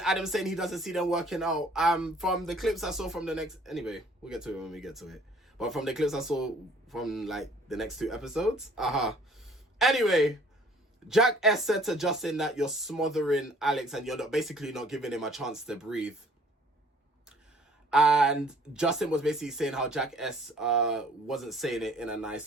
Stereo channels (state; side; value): normal; both; correlation 0.56